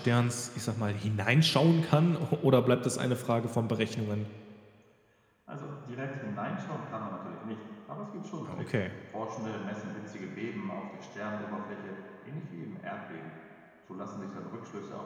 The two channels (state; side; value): identical; both; correlation 1.00